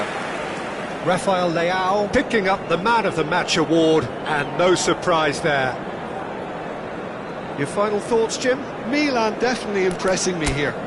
Rafael Leao picking up the Man of the Match award, and no surprise there. Your final thoughts, Jim? Milan definitely impressing me here,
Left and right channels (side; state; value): both; identical; correlation 1.00